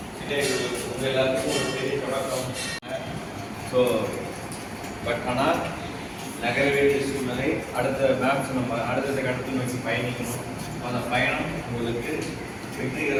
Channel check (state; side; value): identical; both; correlation 1.00